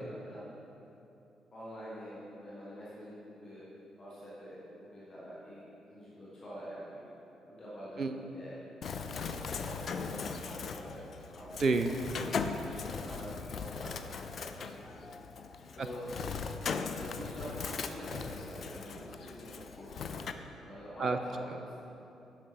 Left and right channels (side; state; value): both; normal; correlation 0.73